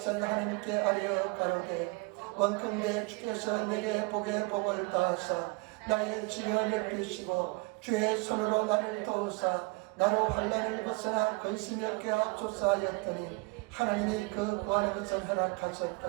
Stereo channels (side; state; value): left; quieter; 26.5 dB